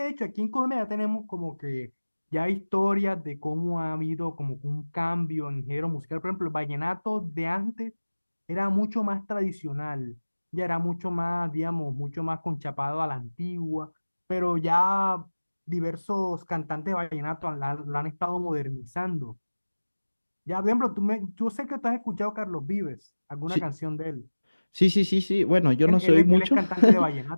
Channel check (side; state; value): both; inverted; correlation -1.00